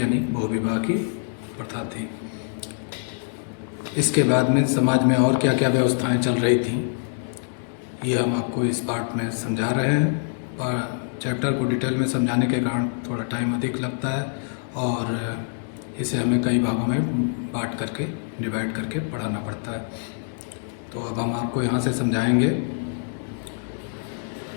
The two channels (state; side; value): silent; right; digital silence